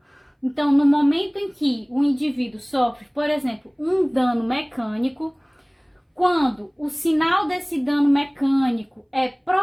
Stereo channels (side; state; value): both; identical; correlation 1.00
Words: Então, no momento em que o indivíduo sofre, por exemplo, um dano mecânico, quando o sinal desse dano mecânico é